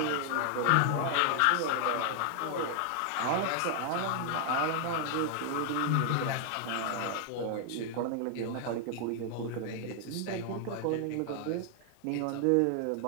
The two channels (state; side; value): different; both; correlation 0.00